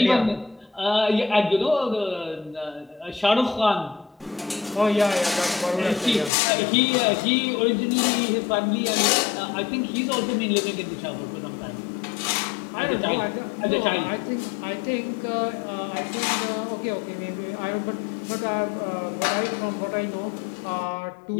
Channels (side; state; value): right; drops out; at 6.3 s